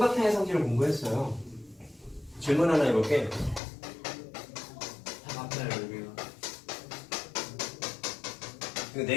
성질을 공부했어요. 질문 하나 해볼게. 앞에 여기가. 이거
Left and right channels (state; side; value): drops out; right; at 3.6 s